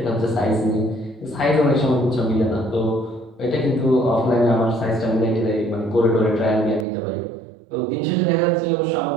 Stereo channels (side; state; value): left; drops out; at 6.9 s